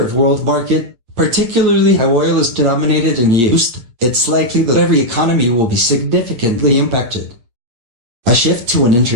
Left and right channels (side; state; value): left; late; 8.6 ms